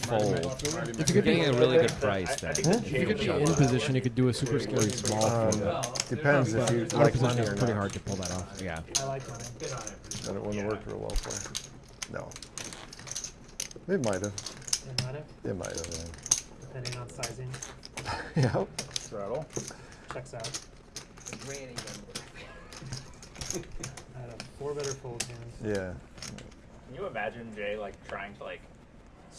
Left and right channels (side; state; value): both; identical; correlation 1.00